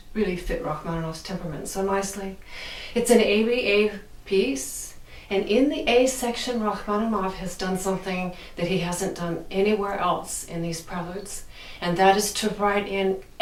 really fit Rachmaninoff's temperament so nicely. It's an ABA piece, and in the A section, Rachmaninoff has done something that he hasn't done anywhere else in these preludes, and that is to write in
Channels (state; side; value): identical; both; correlation 1.00